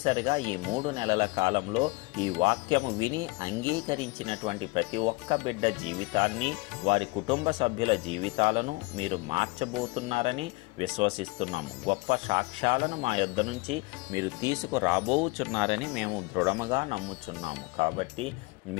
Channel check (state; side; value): quieter; right; 25.6 dB